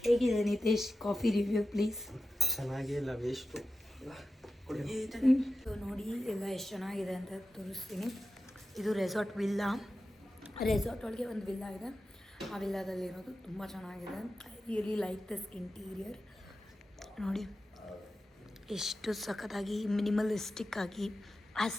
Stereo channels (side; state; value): both; normal; correlation 0.92